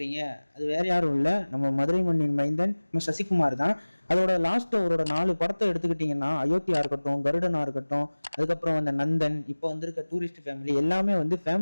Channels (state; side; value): inverted; both; correlation -1.00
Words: அது வேற யாரும் இல்லை, நம்ம மதுரை மண்ணின் மைந்தன் நம்ம சசிகுமார் தான். அதோட லாஸ்ட் அவரோட 4 படத்தை எடுத்துக்கிட்டிங்கன்னா, அயோத்தியா இருக்கட்டும், கருடனா இருக்கட்டும், அதுக்கப்புறம் நந்தன், இப்போ வந்திருக்க டூரிஸ்ட் ஃபேமிலி, எல்லாமே